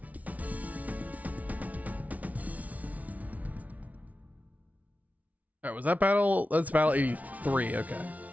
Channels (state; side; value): late; left; 0.071 ms